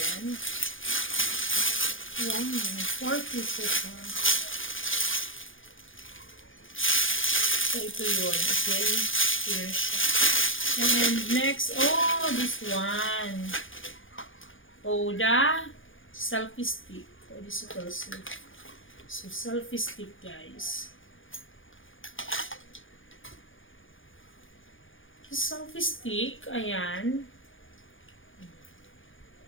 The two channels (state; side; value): late; right; 0.58 ms